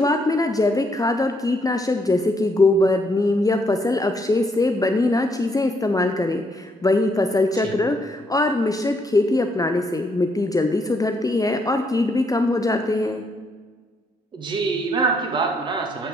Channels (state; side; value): normal; both; correlation 0.73